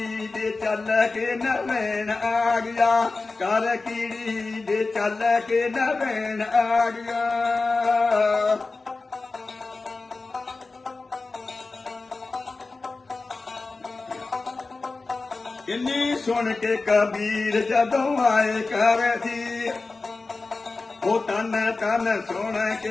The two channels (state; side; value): quieter; right; 3.7 dB